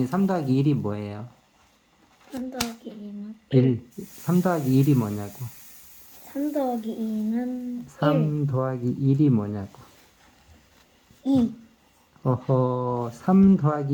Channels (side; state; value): both; identical; correlation 1.00